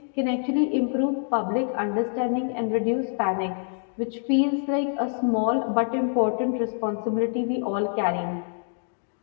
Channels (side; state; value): right; silent; 61 dB below the other